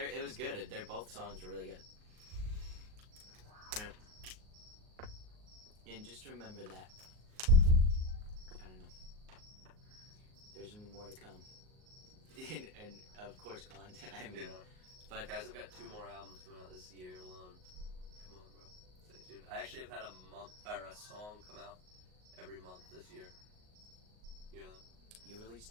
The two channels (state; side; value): late; left; 38 ms